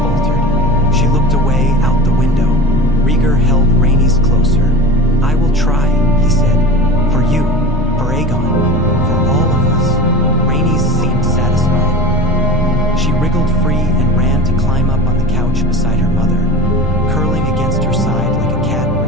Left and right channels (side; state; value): both; normal; correlation 0.33